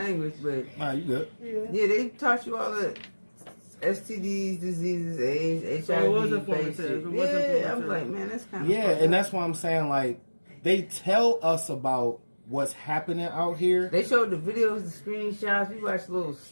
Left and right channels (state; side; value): inverted; both; correlation -1.00